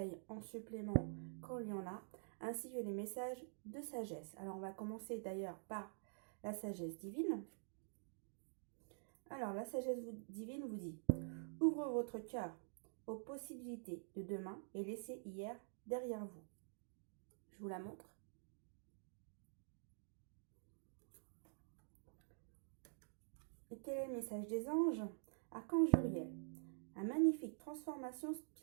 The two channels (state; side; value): silent; left; digital silence